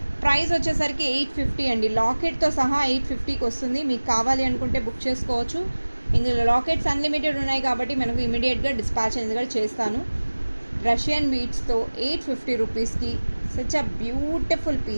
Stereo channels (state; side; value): inverted; both; correlation -1.00